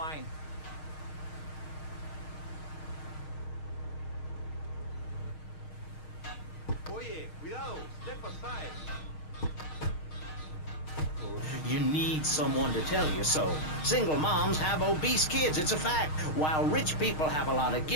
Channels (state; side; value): late; right; 6.5 ms